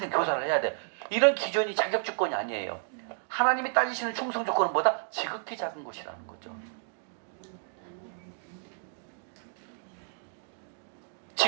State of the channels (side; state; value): left; silent; digital silence